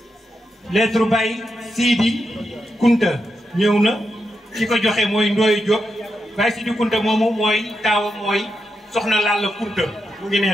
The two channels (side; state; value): both; normal; correlation 0.85